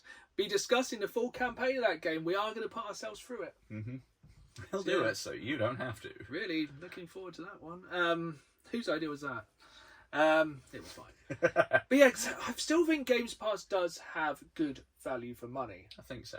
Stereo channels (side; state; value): both; identical; correlation 1.00